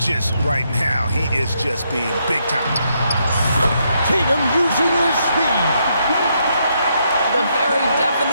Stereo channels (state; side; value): inverted; both; correlation -0.77